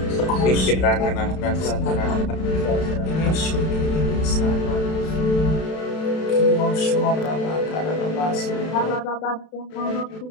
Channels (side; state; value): right; late; 32 ms